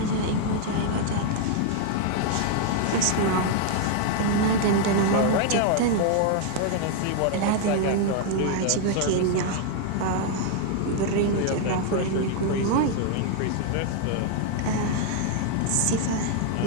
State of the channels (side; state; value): both; different; correlation 0.00